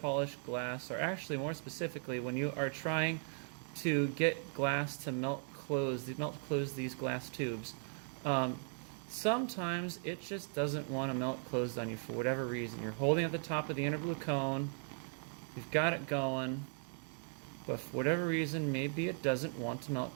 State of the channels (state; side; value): silent; left; 52 dB below the other